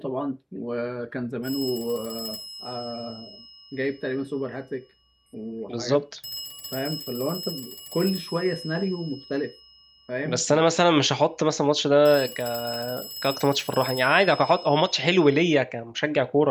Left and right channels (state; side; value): identical; both; correlation 1.00